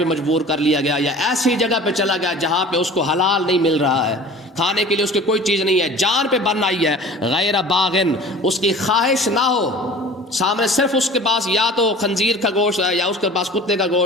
مجبور کر لیا گیا, یا ایسی جگہ پہ چلا گیا جہاں پہ اس کو حلال نہیں مل رہا ہے, کھانے کے لیے اس کی کوئی چیز نہیں ہے, جان پہ بن آئی ہے, غیر باغن, اس کی خواہش نہ ہو, سامنے صرف اس کے پاس یا تو خنزیر کا گوشت ہے یا اس کے پاس کتے کا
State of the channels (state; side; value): normal; both; correlation 0.42